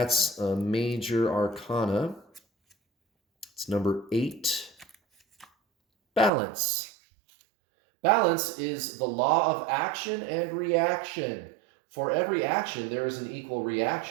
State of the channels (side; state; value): left; drops out; at 6.3 s